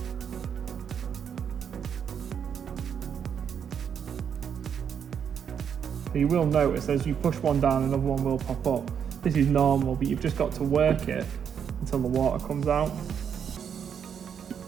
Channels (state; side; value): quieter; left; 7.7 dB